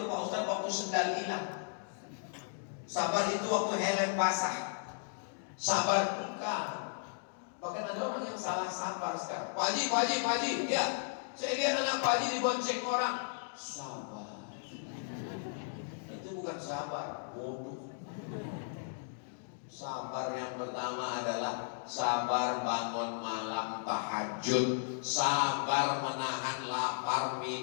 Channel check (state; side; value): silent; right; digital silence